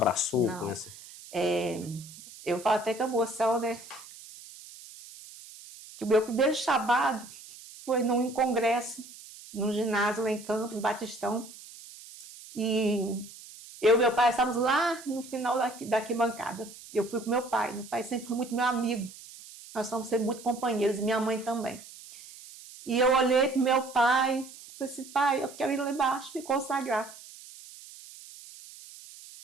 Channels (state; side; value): noise; right; hiss, 17 dB below the sound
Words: não. Com essa? Eu falo até com a emoção, né? Que o meu primeiro chamado foi num congresso, num ginásio lá em Campos, Batistão. E eu e meu pai estávamos lá no final da arquibancada. Eu fui com meu pai. Meu pai sempre foi muito meu amigo. Nós somos sempre muito companheiros, e minha mãe também. E eu olhei para meu pai, falei assim, pai, eu quero ir lá embaixo me consagrar.